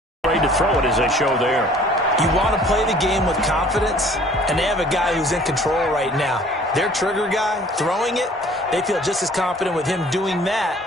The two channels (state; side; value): normal; both; correlation 0.53